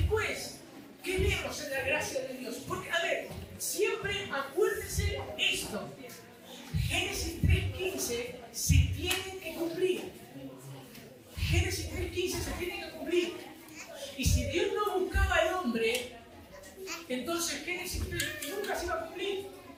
¿qué vemos en la gracia de Dios? Porque, a ver, siempre acuérdense esto. Génesis 3.15 se tiene que cumplir. Génesis 3.15 se tiene que cumplir. Y si Dios no buscaba al hombre, entonces Génesis 3 nunca se iba a cumplir.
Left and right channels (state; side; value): identical; both; correlation 1.00